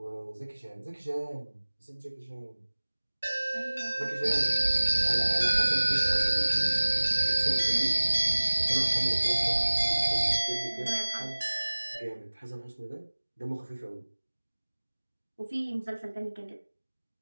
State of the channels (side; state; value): both; inverted; correlation -1.00